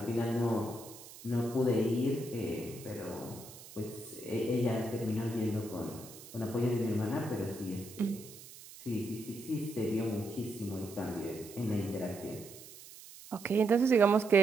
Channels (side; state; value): right; noise; hiss, 17 dB below the sound